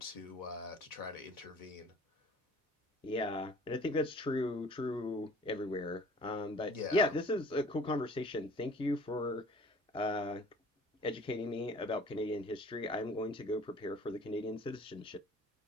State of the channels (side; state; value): both; normal; correlation 0.50